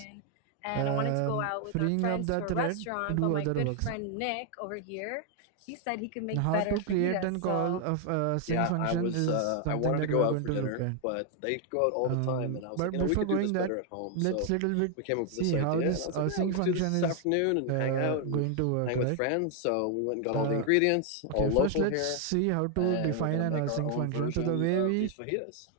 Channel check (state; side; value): different; both; correlation 0.00